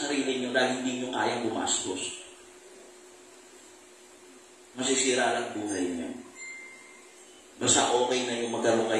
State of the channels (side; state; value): both; identical; correlation 1.00